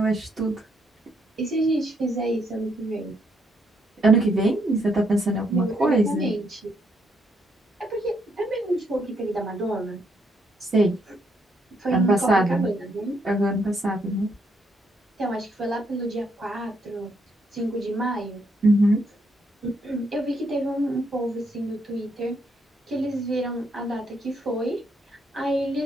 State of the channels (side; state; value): both; normal; correlation 0.75